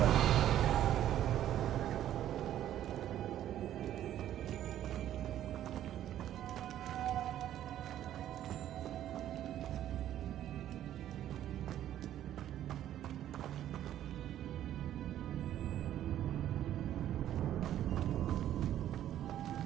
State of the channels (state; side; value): quieter; left; 11.8 dB